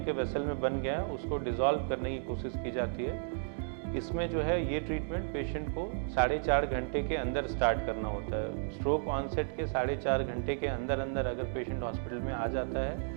के वेसल में बन गया है उसको डिसॉल्व करने की कोशिश की जाती है। इसमें जो है ये ट्रीटमेंट पेशेंट को 4.5 घंटे के अंदर स्टार्ट करना होता है। स्ट्रोक ऑनसेट के 4.5 घंटे के अंदर अगर पेशेंट हॉस्पिटल में आ जाता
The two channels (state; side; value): silent; left; digital silence